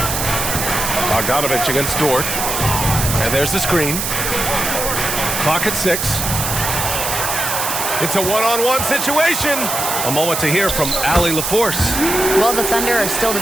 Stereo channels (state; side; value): noise; right; hiss, 2 dB below the sound